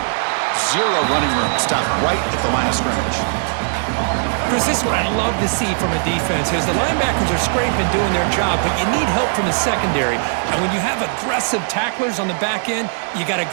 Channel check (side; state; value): left; silent; 67 dB below the other